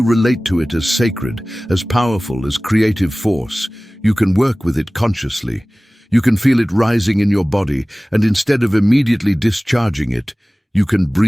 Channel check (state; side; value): normal; both; correlation 0.98